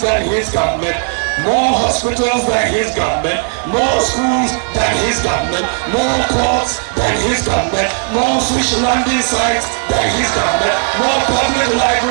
than his government, more hospitals than his government, more schools than his government, more ports than his government, more fish landing sites than his government, more public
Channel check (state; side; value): silent; left; 55 dB below the other